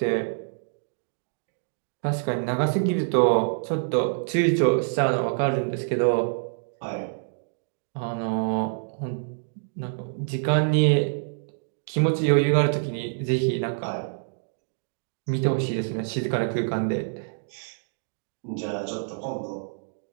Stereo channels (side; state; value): left; silent; digital silence